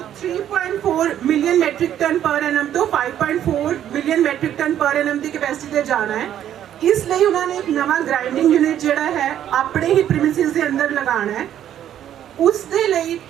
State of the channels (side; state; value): left; quieter; 10.7 dB